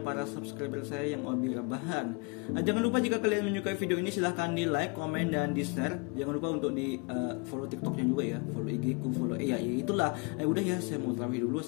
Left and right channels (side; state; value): right; quieter; 31.3 dB